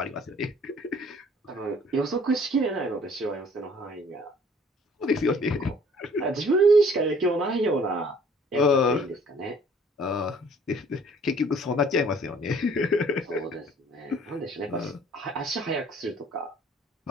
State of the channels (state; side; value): normal; both; correlation 0.55